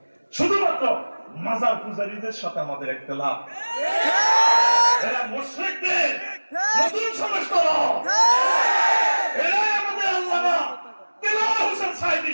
শুধুমাত্র মাজার পূজারীদের সাথে আমাদের ইখতিলাফ। এরা মুশরিকদের নতুন সংস্করণ। এরাই আমাদের আল্লামা দেলোয়ার হোসেন সাইদি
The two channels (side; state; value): both; inverted; correlation -1.00